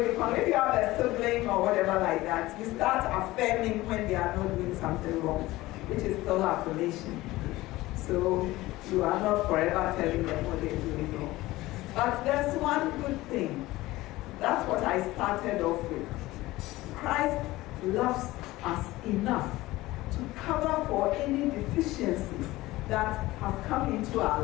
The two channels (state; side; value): quieter; right; 18.3 dB